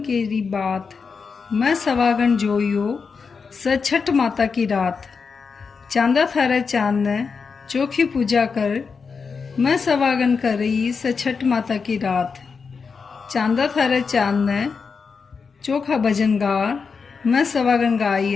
बात, मैं सवागन जोयो स छठ माता की रात। चांदा थारे चांद ने चोखी पूजा कर, मैं सवागन कर रही स छठ माता की रात। चांदा थारे चांद ने चोखा भजन गार, मैं सवागन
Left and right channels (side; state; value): right; quieter; 5.3 dB